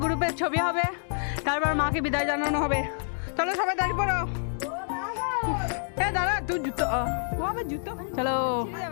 গ্রুপের ছবি হবে, তারপর মাকে বিদায় জানানো হবে। চলো সবাই দাঁড়িয়ে পড়ো। দাঁড়া, তুই জুতো জুতো চলো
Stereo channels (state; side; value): silent; right; 60 dB below the other